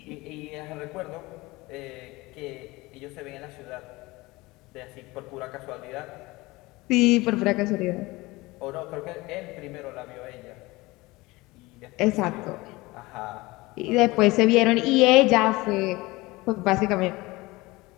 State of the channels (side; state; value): right; quieter; 21.5 dB